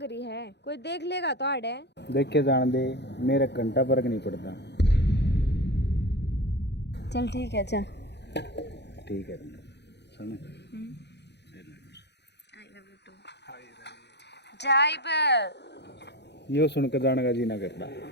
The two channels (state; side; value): late; right; 0.50 ms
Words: रही है, कोई देख लेगा तो आड़े। देख के जान दे, मेरा घंटा फर्क नहीं पड़ता। चल ठीक है, चल। ठीक है सुन, जाइब यो सुन के जाने का जी ना करता।